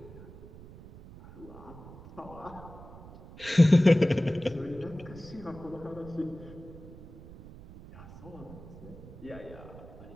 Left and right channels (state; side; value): noise; right; rumble, 17 dB below the sound